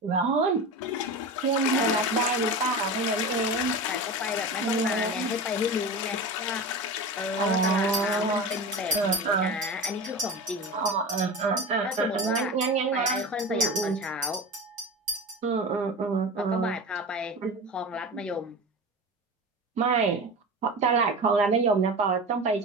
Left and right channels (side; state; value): both; normal; correlation 0.28